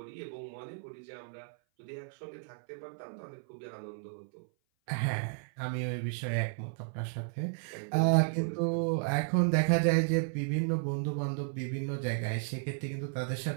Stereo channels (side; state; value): left; silent; 55 dB below the other